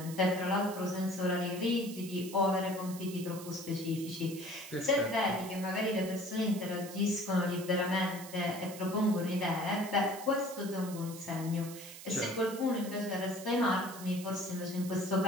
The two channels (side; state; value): right; noise; hiss, 14 dB below the sound